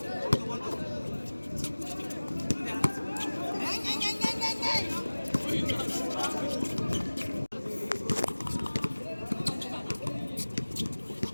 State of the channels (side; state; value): both; inverted; correlation -1.00